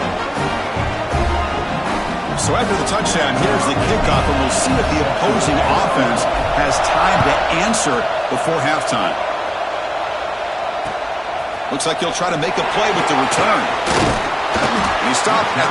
So after the touchdown, here's the kickoff, and we'll see if the opposing offense has time to answer before halftime. Looks like he'll try to make a play with the return. He stopped at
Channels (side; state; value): both; identical; correlation 1.00